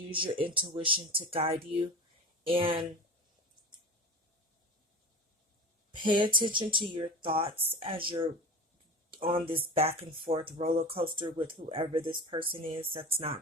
your intuition to guide you, and pay attention to your thoughts as you're on this back and forth roller coaster with whoever this person is that's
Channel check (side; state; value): both; normal; correlation 0.32